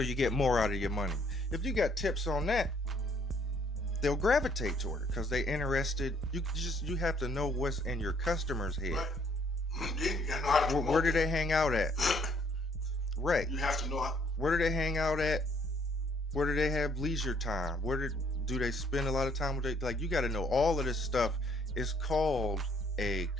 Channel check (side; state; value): both; normal; correlation 0.65